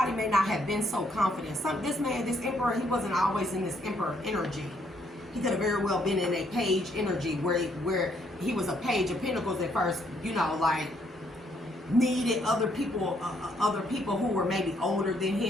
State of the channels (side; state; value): both; normal; correlation 0.71